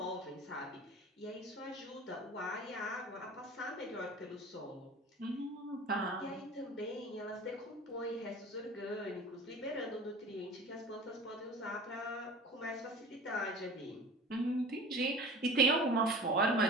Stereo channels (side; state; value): both; normal; correlation 0.39